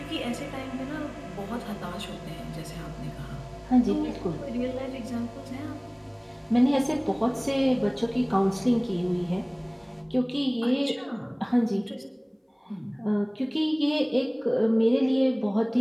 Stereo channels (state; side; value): identical; both; correlation 1.00